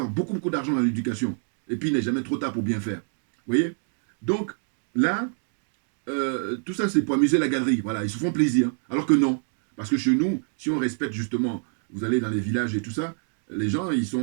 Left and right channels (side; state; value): left; silent; 57 dB below the other